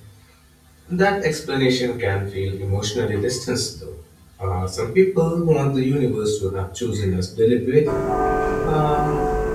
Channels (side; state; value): both; identical; correlation 1.00